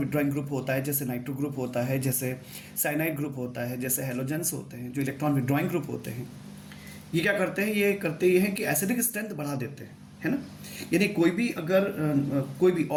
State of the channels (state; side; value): identical; both; correlation 1.00